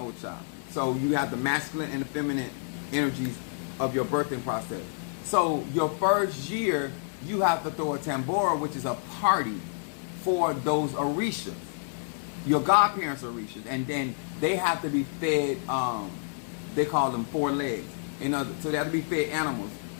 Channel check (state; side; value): silent; right; 59 dB below the other